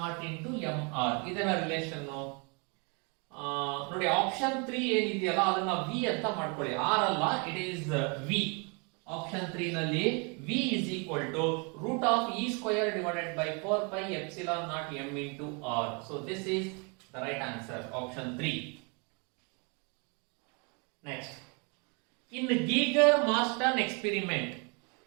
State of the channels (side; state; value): left; quieter; 33.8 dB